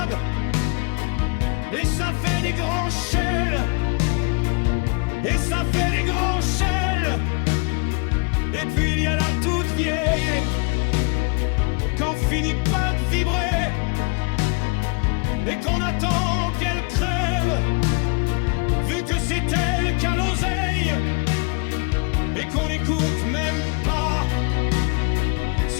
et ça fait des grands chels, et ça fait des grands chels. Et puis il y a la toute vieille, qu'on finit pas de vibrer, et qu'on attend qu'elle crève, vu que c'est elle qui a l'oseille, et qu'on n'écoute même pas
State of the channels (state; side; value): quieter; right; 32.2 dB